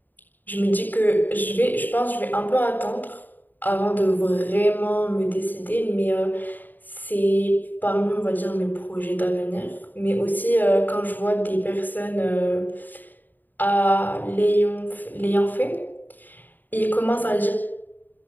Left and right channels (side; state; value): right; late; 0.088 ms